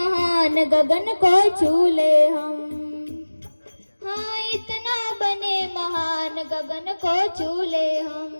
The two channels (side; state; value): both; inverted; correlation -1.00